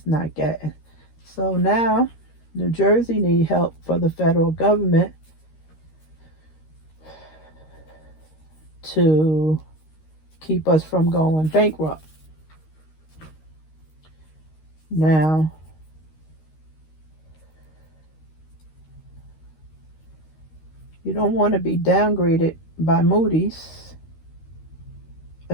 not getting. So now New Jersey need help for the federal government to keep us from going bankrupt. Now, you don't want to be downgraded by Moody's.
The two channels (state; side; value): late; right; 13 ms